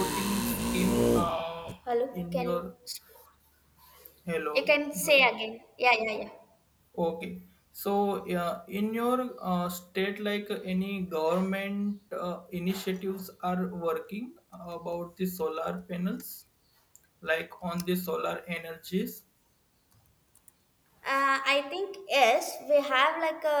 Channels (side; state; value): both; identical; correlation 1.00